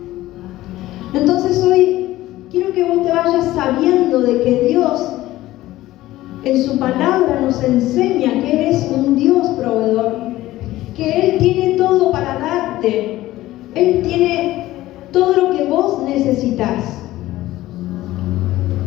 Entonces hoy quiero que vos te vayas sabiendo de que Dios en su palabra nos enseña que Él es un Dios proveedor, que Él tiene todo para darte. Él tiene todo lo que vos necesitas.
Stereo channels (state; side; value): quieter; right; 16.1 dB